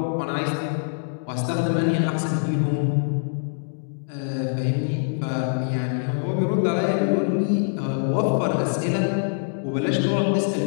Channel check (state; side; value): silent; right; digital silence